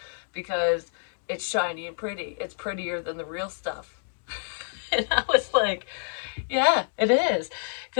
because it's shiny and pretty. It's prettier than the real stuff. And I was like, yeah, it is.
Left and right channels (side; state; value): right; silent; digital silence